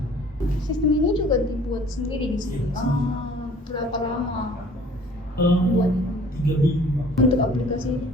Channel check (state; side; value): normal; both; correlation 0.51